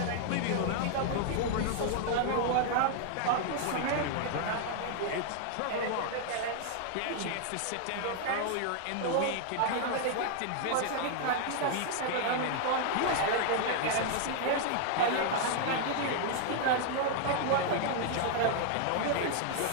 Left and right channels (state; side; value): different; both; correlation 0.00